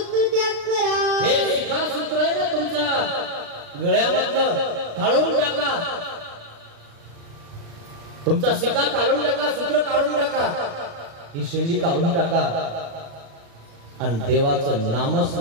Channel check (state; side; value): late; left; 36 ms